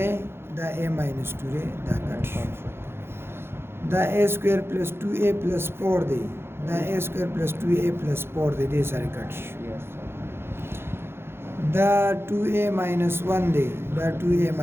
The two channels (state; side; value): late; left; 0.11 ms